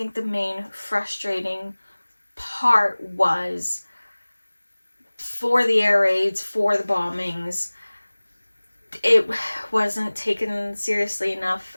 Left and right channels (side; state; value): both; inverted; correlation -1.00